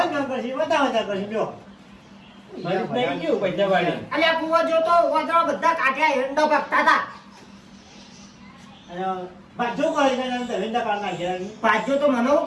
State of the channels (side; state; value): both; identical; correlation 1.00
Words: ઘર કરશે બધા કરશે જો ફરી નહીં ગયું પૈસા વાળી. અલ્યા કુવો જોતો વાદળો બધા કાઢ્યા હેંડો ભાગતા હતા. અને બાજુ કરી દે ધંધા કાઢ નાખ્યા પાછો તો મને હું